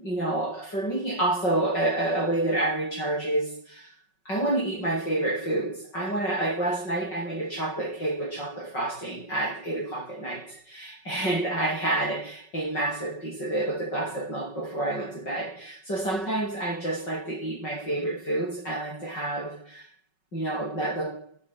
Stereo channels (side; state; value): right; late; 5.4 ms